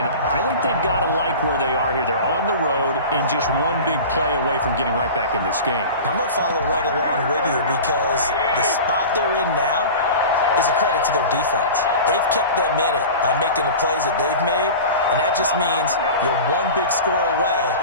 I think they've got to like where they are here. They're on the road and just one big play away from getting right back in this game. I'm going to follow right along with you because the spot they're in now is a credit to their defense. They've kept them in it by making the plays that they've made, and that just means you're one big score away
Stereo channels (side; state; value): both; inverted; correlation -0.34